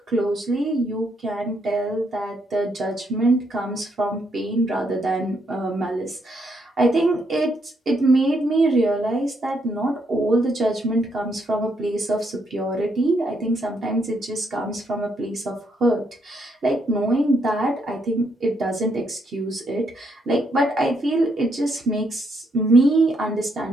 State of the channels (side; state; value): both; normal; correlation 0.75